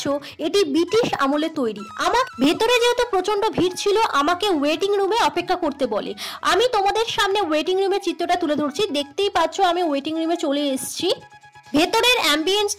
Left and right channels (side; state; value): both; identical; correlation 1.00